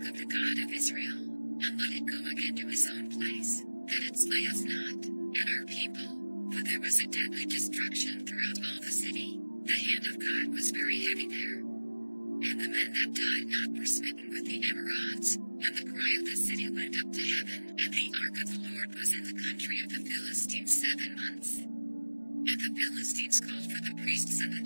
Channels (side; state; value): both; inverted; correlation -1.00